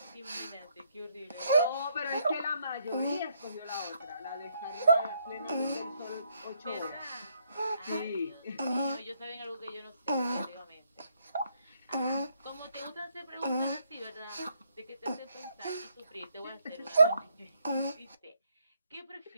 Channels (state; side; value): inverted; both; correlation -0.72